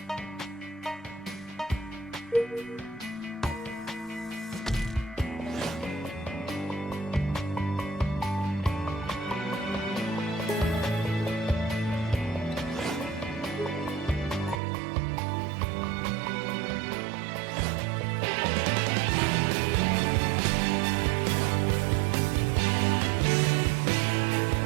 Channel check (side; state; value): left; drops out; at 14.6 s